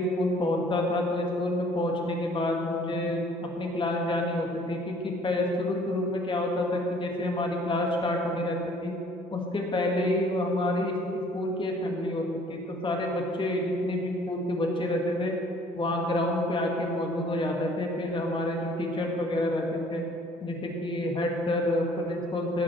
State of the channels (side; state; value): both; normal; correlation 0.57